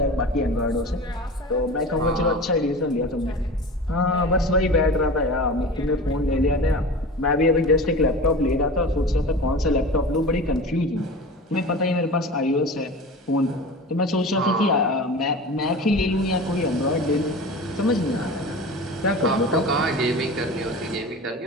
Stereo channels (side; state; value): both; normal; correlation 0.34